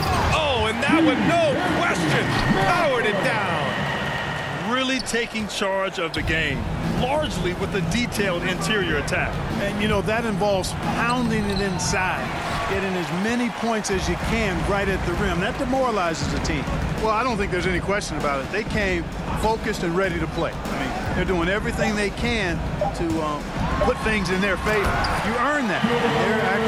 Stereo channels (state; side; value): identical; both; correlation 1.00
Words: and that one, no question, powered it down. Really taking charge of the game, largely with a detailed interior attack. And, you know, that involves pounding it inside, getting as many points as you can right at the rim. That demoralizes the team. Well, I don't think there's any question about it. They came focused and ready to play. I mean, they're doing everything they can to put things in their favor. You earn that. They're